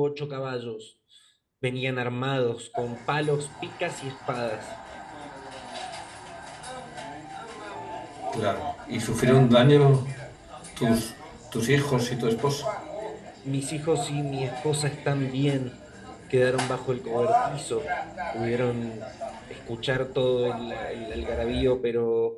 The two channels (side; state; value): both; identical; correlation 1.00